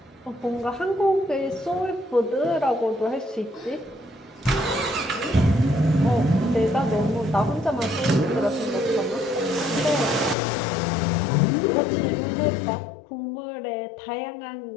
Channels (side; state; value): right; drops out; at 10.4 s